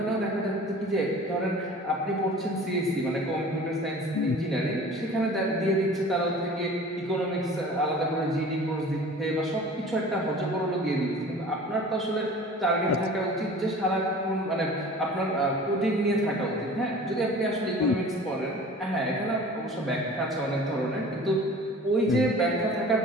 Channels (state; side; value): normal; both; correlation 0.43